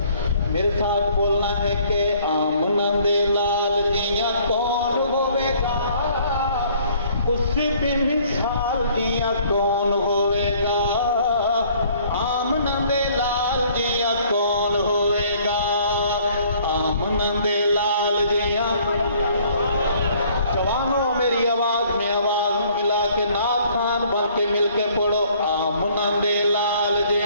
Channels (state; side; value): inverted; both; correlation -0.59